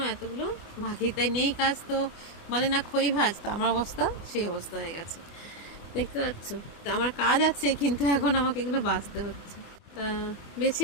এতগুলো বাকি। তাই নেই কাজ তো বলে না খই ভাজ, তো আমার অবস্থা সেই অবস্থা হয়ে গেছে, দেখতে পাচ্ছ। তো আমার কাজ আছে, কিন্তু এখন আমাকে এগুলো বাছতে হচ্ছে। তা বেছে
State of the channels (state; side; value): late; right; 24 ms